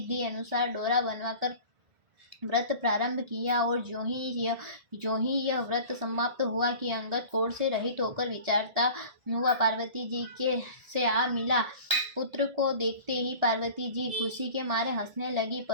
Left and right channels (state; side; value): late; left; 1.8 ms